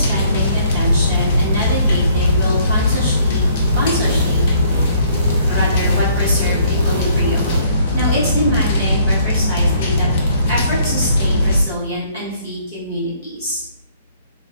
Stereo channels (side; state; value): both; inverted; correlation -0.62